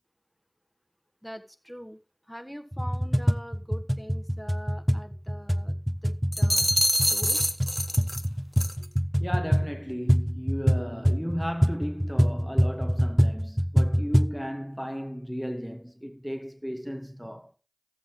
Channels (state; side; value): identical; both; correlation 1.00